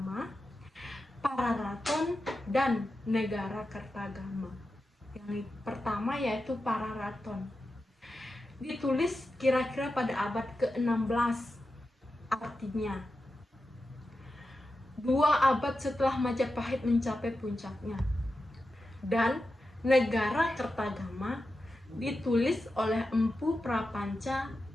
Pararaton dan Negara Kertagama. Yang pertama yaitu Pararaton. Ditulis kira-kira pada abad ke-16, artinya 2 abad setelah Majapahit mencapai puncaknya. Dan Negara Kertagama ditulis oleh Empu Prapanca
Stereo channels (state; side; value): normal; both; correlation 0.90